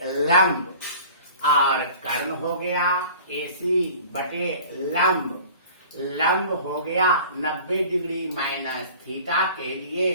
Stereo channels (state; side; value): inverted; both; correlation -0.44